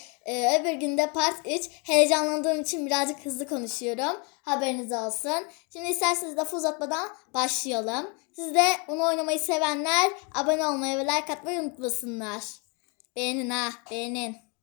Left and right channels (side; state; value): right; quieter; 33.1 dB